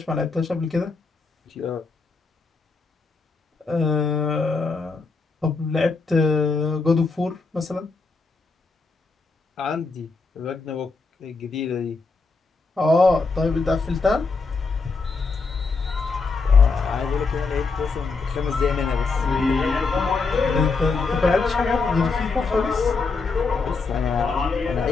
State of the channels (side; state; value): right; quieter; 4.2 dB